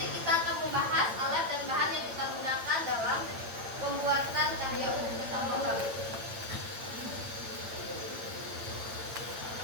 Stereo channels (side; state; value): left; late; 8.9 ms